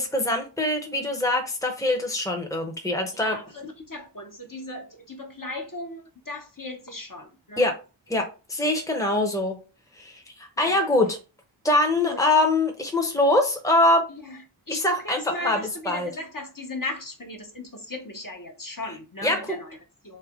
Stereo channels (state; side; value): normal; both; correlation 0.28